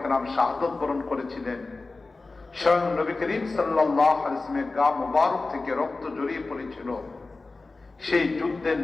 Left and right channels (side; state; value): right; quieter; 3.5 dB